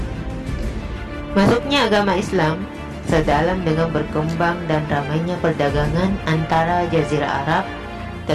Masuknya agama Islam sedalam dengan berkembang dan ramainya perdagangan antara Jazirah Arab,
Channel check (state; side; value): identical; both; correlation 1.00